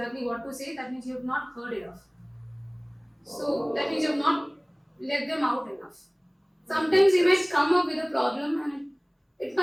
what to say, that means you have not heard enough. So that means you have not let them out enough. Sometimes they might come up with a problem and it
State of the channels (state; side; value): identical; both; correlation 1.00